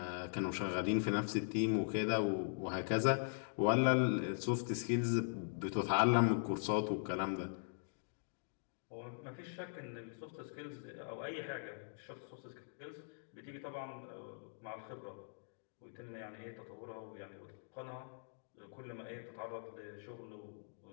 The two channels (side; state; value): right; silent; digital silence